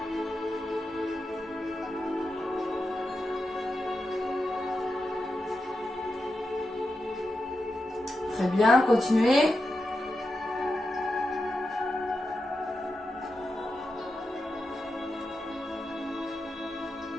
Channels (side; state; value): both; normal; correlation 0.88